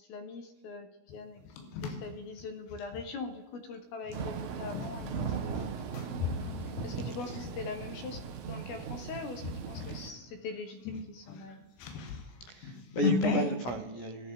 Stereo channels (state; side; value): late; right; 16 ms